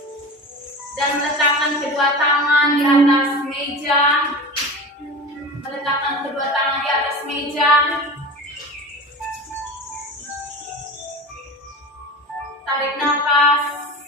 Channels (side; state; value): both; normal; correlation 0.31